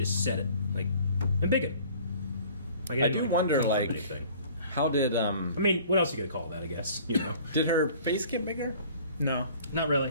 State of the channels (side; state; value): both; inverted; correlation -0.51